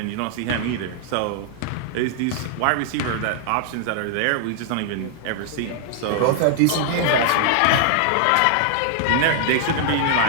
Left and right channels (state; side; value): different; both; correlation -0.01